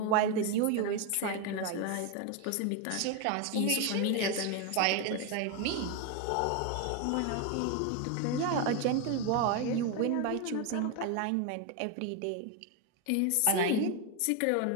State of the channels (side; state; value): both; different; correlation 0.01